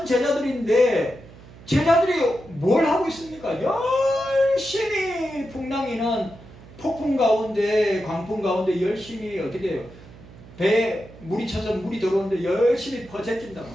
제자들인데 제자들이 뭘 하고 있습니까? 열심히 풍랑이는 폭풍 가운데 광풍 가운데 열심히 어떻게 해요? 배에 물이 쳐서 물이 들어오는데 열심히 퍼제낀단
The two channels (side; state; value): right; noise; hum, 20 dB below the sound